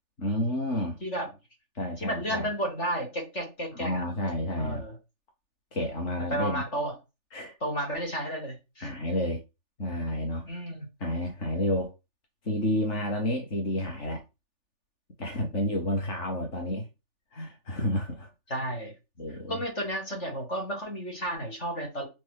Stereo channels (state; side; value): late; right; 3.4 ms